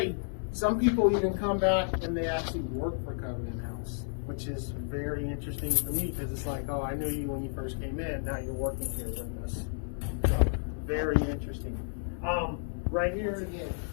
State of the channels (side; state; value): right; silent; 57 dB below the other